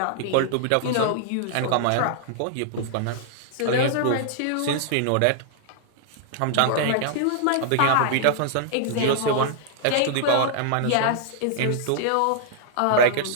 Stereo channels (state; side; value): different; both; correlation -0.01